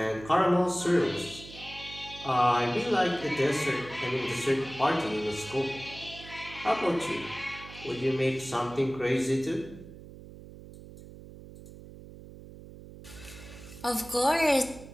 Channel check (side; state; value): right; noise; hum, 16 dB below the sound